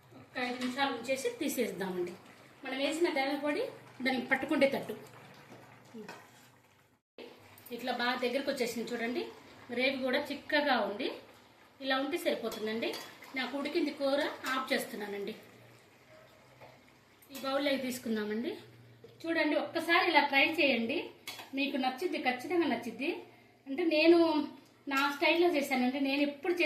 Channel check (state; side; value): identical; both; correlation 1.00